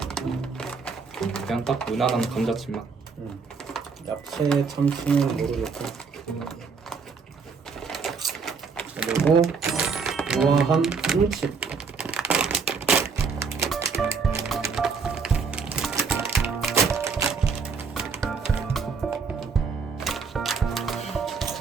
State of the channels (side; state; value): left; quieter; 5.3 dB